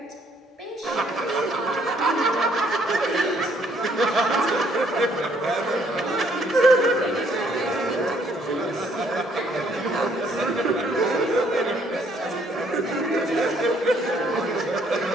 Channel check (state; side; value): normal; both; correlation 0.66